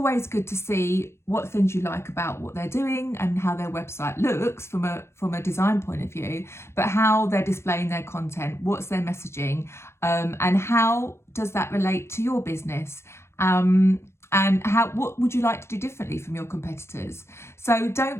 good to see what things you like about what they're doing and how their website looks from a design point of view, but how they're displaying their content, what's their messaging, and how does that relate to your business? And what would you like to do differently from your competitors? So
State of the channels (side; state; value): right; late; 0.13 ms